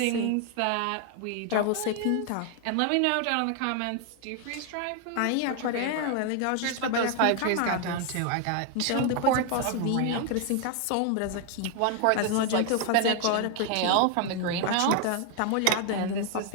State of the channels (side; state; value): both; different; correlation 0.00